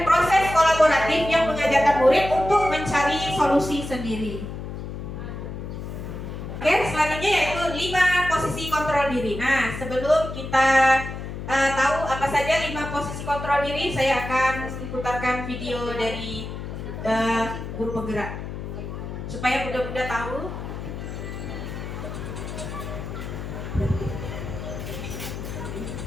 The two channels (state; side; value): noise; left; hum, 8 dB below the sound